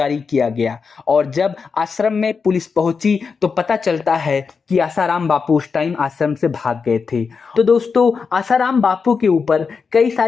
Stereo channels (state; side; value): quieter; right; 5.3 dB